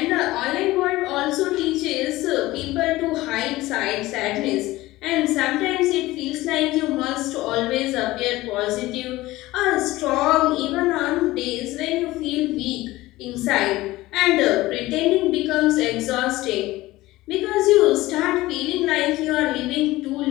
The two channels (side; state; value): right; quieter; 18.2 dB